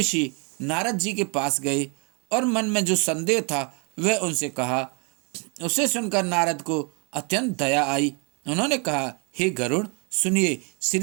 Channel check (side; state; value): left; quieter; 34.2 dB